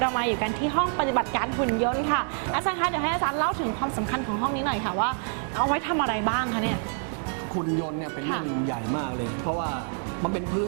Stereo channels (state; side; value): silent; left; 55 dB below the other